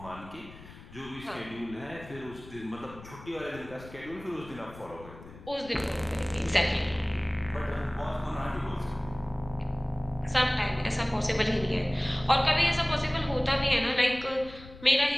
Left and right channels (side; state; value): left; noise; rumble, 17 dB below the sound